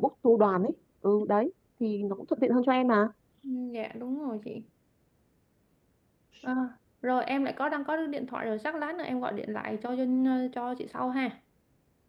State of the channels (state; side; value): identical; both; correlation 1.00